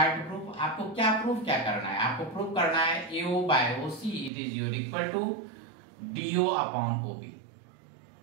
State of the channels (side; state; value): left; drops out; at 4.3 s